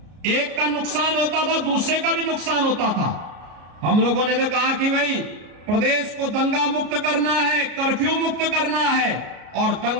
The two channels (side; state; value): left; late; 33 ms